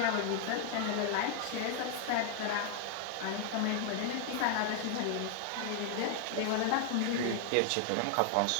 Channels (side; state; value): both; different; correlation 0.00